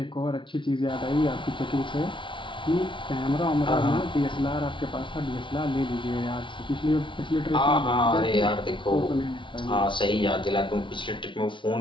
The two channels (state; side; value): late; right; 0.24 ms